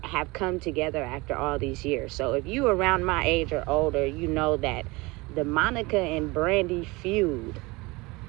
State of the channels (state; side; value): quieter; left; 23.9 dB